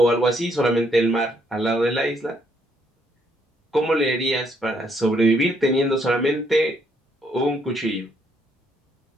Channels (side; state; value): both; normal; correlation 0.70